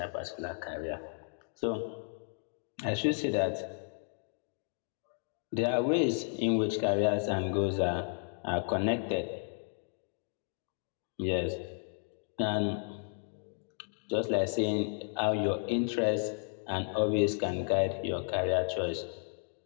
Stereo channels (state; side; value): silent; right; 55 dB below the other